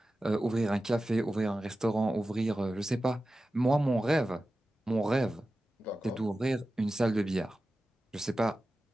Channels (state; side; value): normal; both; correlation 0.94